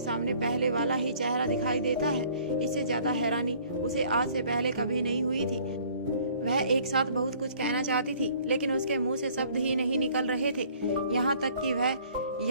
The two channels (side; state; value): both; inverted; correlation -0.56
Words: सामने पहले वाला ही चेहरा दिखाई देता है। इससे ज्यादा हैरानी उसे आज से पहले कभी नहीं हुई थी। वह एक साथ बहुत कुछ कहना चाहती थी, लेकिन उसके मुंह से शब्द ही नहीं निकल रहे थे। यहाँ तक कि वह